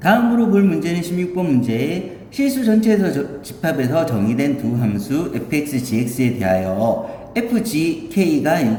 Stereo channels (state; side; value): identical; both; correlation 1.00